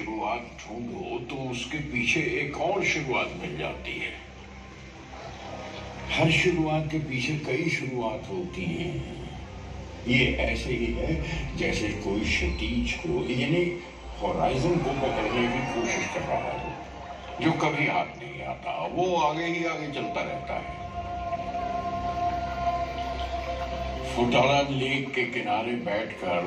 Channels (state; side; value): identical; both; correlation 1.00